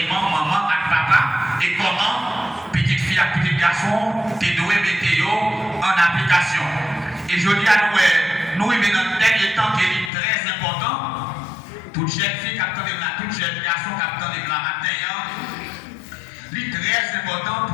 maman et papa, et comment petite fille et petit garçon, tu dois mettre en application. Et je dis à nous, nous vivons dans le dernier temps qui est très important. Toute jeune fille qui attend de la, toute jeune garçon qui attend de la matin, c'est très important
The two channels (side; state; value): right; drops out; at 10.1 s